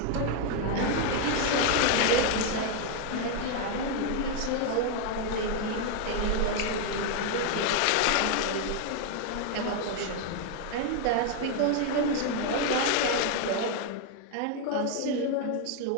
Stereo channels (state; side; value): different; both; correlation 0.01